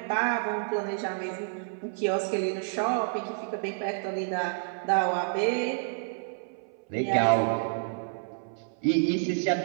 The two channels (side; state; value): left; silent; 58 dB below the other